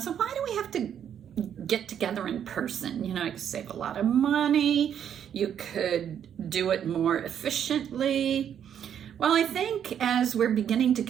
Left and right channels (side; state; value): left; quieter; 9.1 dB